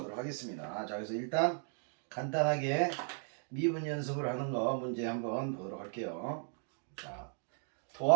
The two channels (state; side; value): silent; left; 54 dB below the other